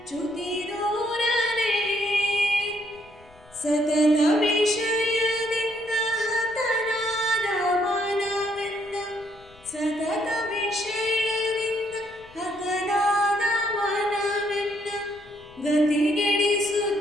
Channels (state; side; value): noise; left; rumble, 26 dB below the sound